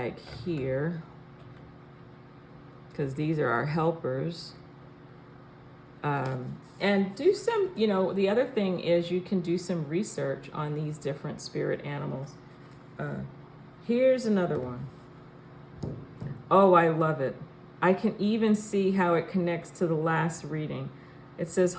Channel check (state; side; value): identical; both; correlation 1.00